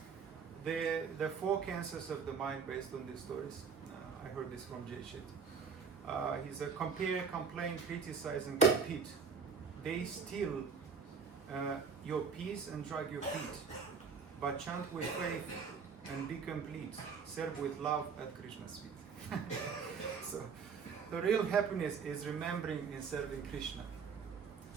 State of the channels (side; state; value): left; quieter; 5.9 dB